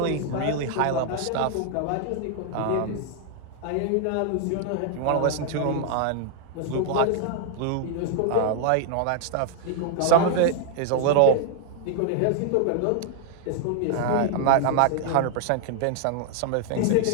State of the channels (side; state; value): both; different; correlation 0.00